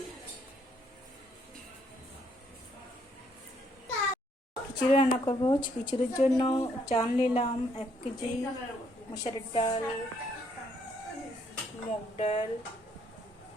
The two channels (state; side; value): normal; both; correlation 0.70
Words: খিচুড়ি রান্না করবো। খিচুড়ির জন্য চাল নিলাম 1 কেজি, মসুরের ডাল, মুগ ডাল,